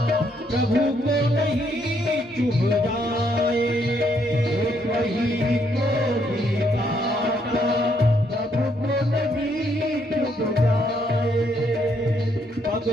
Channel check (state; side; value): normal; both; correlation 0.72